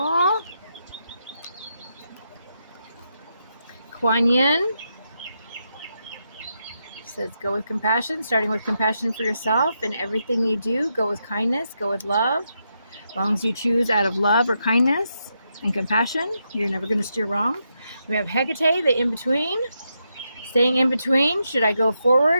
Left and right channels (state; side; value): inverted; both; correlation -0.83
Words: Kuan Yin says go with compassion, starting with compassion for yourself in everything you do. Go with kindness, go with love. As long as you choose out of love or kindness and compassion, you're never going to steer wrong. We have Hecate, the in-between. Staying in between. Should I go